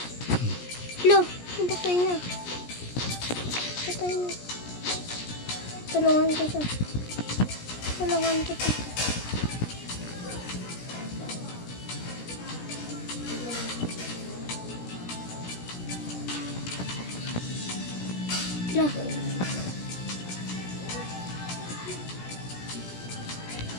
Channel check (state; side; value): late; right; 17 ms